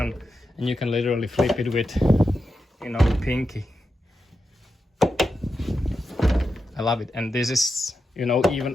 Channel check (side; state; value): both; normal; correlation 0.88